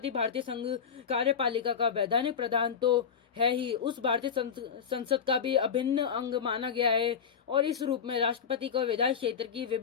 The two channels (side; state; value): right; quieter; 7.1 dB